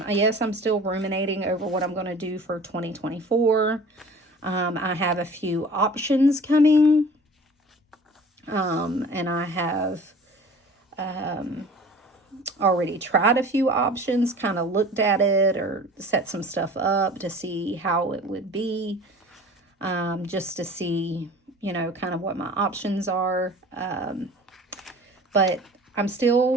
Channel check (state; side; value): normal; both; correlation 0.44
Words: guess I'm still ruminating over what I'm going to do for 2024. I have a few options coming. And I have already tried a few options, kind of looked at it or set some stuff up to see how it would be, just to see, you know, kind of what my options are. But I'm